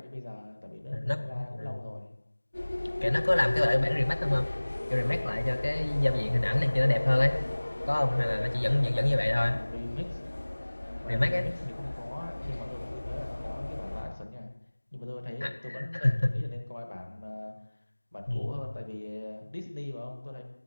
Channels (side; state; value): both; inverted; correlation -1.00